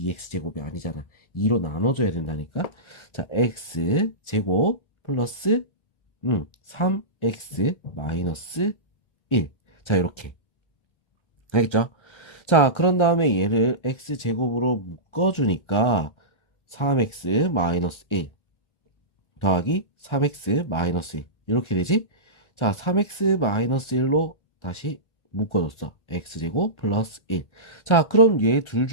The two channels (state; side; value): late; right; 1.4 ms